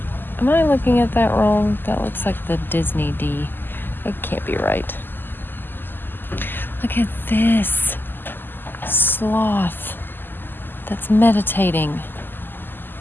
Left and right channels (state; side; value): late; right; 0.093 ms